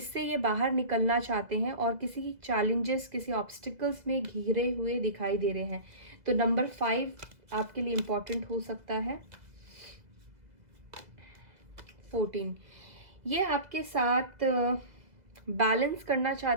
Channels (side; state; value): left; late; 2.0 ms